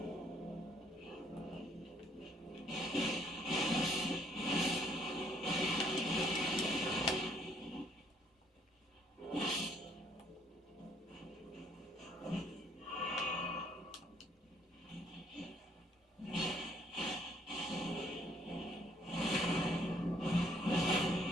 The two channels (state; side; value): normal; both; correlation 0.65